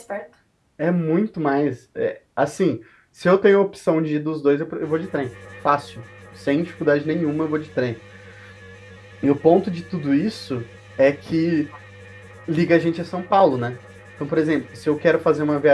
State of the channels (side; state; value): both; identical; correlation 1.00